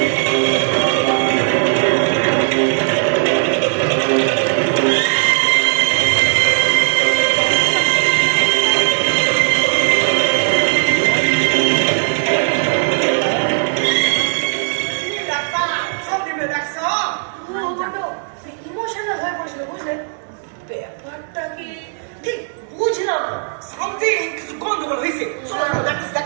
ব্যাপারটা কি ঠিক বুঝলাম না। সামথিং কিছু গন্ডগোল হয়েছে। চলো চলো,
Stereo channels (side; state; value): left; silent; 62 dB below the other